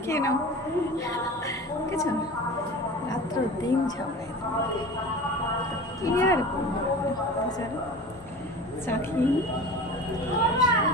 খেয়ে নাও। বুঝেছ, রাত্র দিন ঝগড়া এদের মধ্যে। কি আর করবো বলো? চলো চা খেয়ে নিই।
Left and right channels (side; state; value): both; normal; correlation 0.36